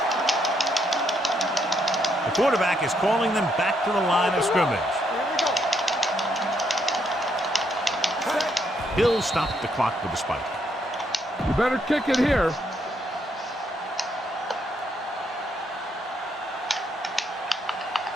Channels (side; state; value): both; normal; correlation 0.75